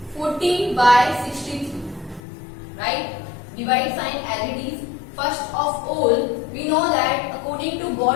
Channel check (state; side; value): drops out; right; at 2.2 s